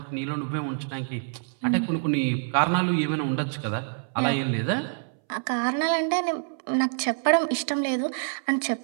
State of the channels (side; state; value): left; silent; 61 dB below the other